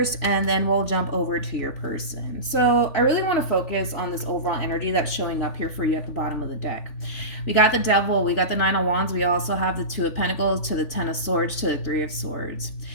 and then we'll jump over to your person. So I really want to focus on this overall energy that's showing up here for you at the bottom of the deck. We got the Devil, we got the Nine of Wands, we also have the Two of Pentacles to the Ten of Swords to the Three of Swords.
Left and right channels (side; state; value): right; late; 3.4 ms